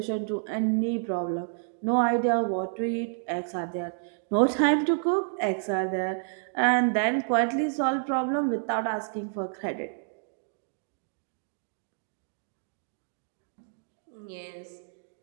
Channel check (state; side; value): silent; left; digital silence